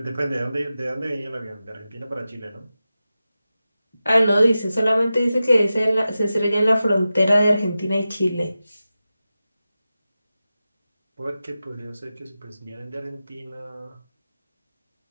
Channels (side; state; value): both; inverted; correlation -0.94